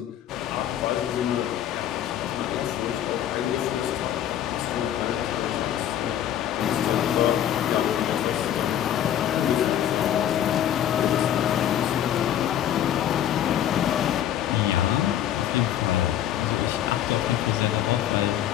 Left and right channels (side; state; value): right; quieter; 10.9 dB